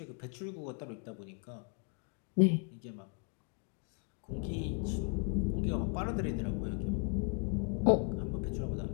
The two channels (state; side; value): quieter; right; 39.9 dB